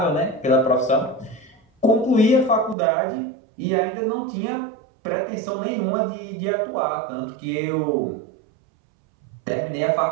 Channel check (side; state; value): left; drops out; at 2.8 s